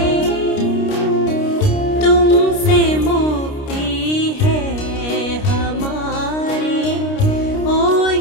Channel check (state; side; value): late; right; 29 ms